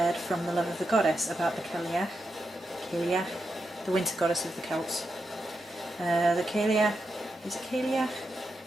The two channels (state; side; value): normal; both; correlation 0.86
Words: from the love of the goddess about the Cailleach, the winter goddess of the Celts. The Cailleach, is it Cailleach?